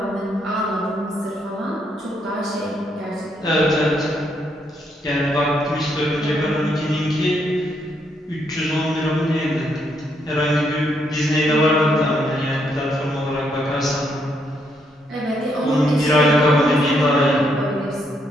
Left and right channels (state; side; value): normal; both; correlation 0.75